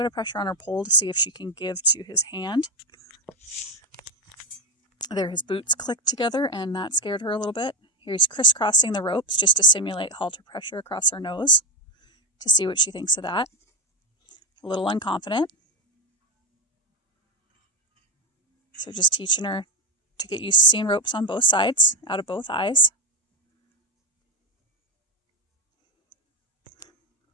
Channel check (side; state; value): both; normal; correlation 0.10